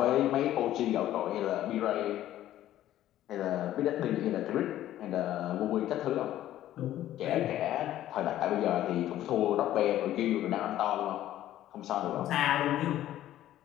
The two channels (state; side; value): quieter; right; 13.1 dB